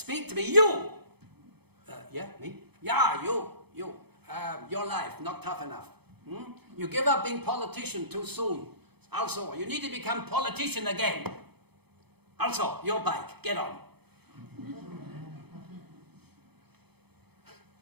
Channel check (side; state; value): left; late; 0.98 ms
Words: to me. You! Yeah, me? Yeah, you. Your life, not tough enough. You give up being politician too soon. Also, you need to become politician again. Also, your bike, get on.